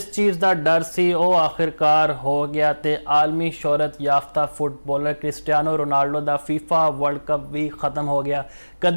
चीज़ का डर सी वो आखिरकार हो गया ते आलमी शोहरत याफ्ता फुटबॉलर क्रिस्टियानो रोनाल्डो का फीफा वर्ल्ड कप भी ख़त्म हो गया।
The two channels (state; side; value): inverted; both; correlation -1.00